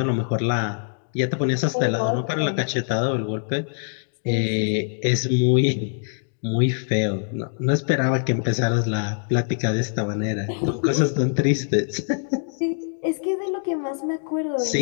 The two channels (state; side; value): silent; right; digital silence